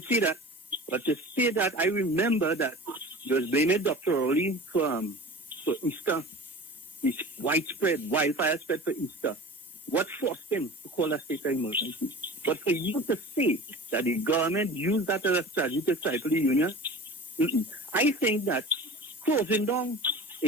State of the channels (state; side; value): normal; both; correlation 0.37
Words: see that. But to say that, I remember that you was blaming Dr. Rowley for Easter. This widespread wildfire spread for Easter. What forced him to call a state of emergency? But for you to say that the government used that as a strategy to stifle the union, I think that closing down